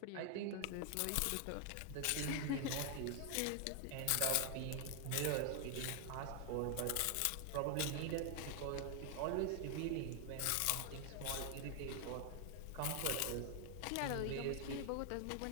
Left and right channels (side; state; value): both; different; correlation 0.00